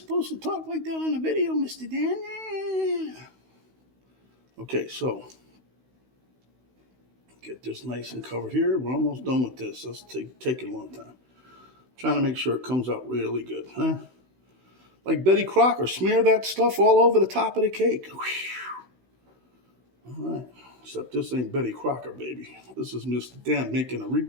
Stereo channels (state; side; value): late; left; 16 ms